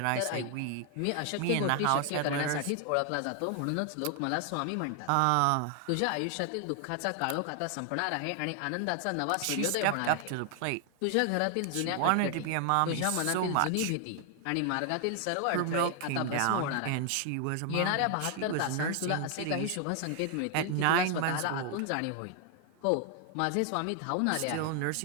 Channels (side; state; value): both; different; correlation 0.00